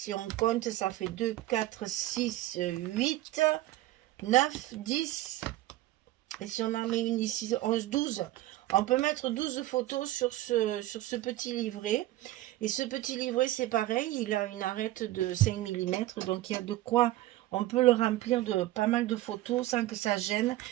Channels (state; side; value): quieter; left; 16.1 dB